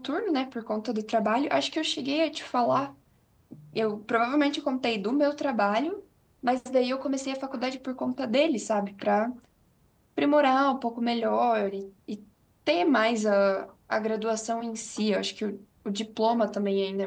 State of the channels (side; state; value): both; identical; correlation 1.00